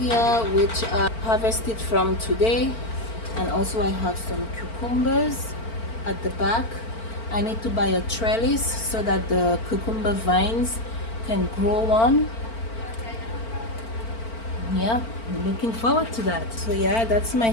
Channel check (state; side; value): late; right; 4.4 ms